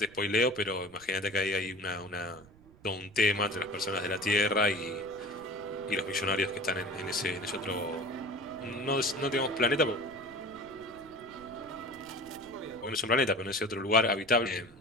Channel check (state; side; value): noise; right; rumble, 24 dB below the sound